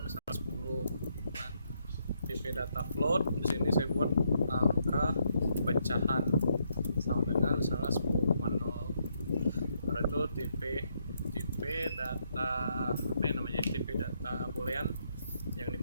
misalnya 10. Nah, tipe data float di sini saya buat angka pecahan sama dengan misalnya 10,0. Lalu itu tipe data tipe data boolean, yang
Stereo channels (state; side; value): inverted; both; correlation -0.76